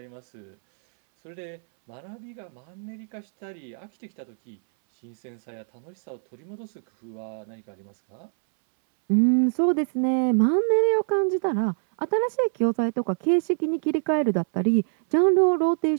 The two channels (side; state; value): left; silent; 62 dB below the other